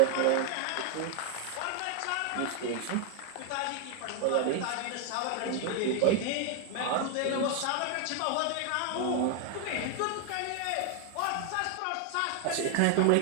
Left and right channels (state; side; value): different; both; correlation 0.00